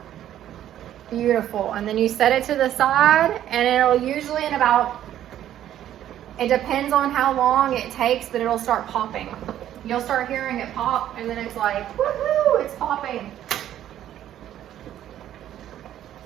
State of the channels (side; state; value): left; quieter; 11.6 dB